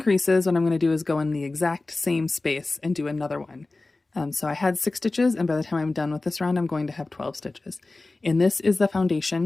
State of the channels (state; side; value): quieter; right; 3.2 dB